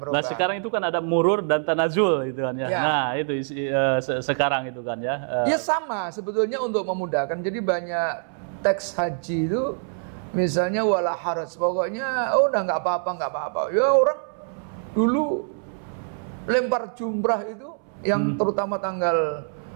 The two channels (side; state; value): left; silent; 62 dB below the other